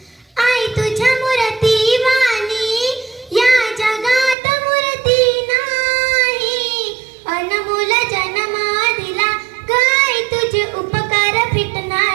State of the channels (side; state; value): left; drops out; at 4.4 s